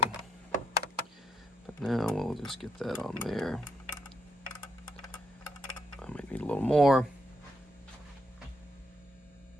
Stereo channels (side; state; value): both; normal; correlation 0.77